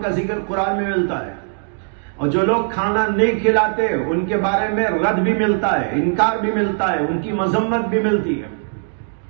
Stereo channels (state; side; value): silent; left; 62 dB below the other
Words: کا ذکر قرآن میں ملتا ہے، اور جو لوگ کھانا نہیں کھلاتے ان کے بارے میں رد بھی ملتا ہے، انکار بھی ملتا ہے، ان کی مذمت بھی ملتی ہے۔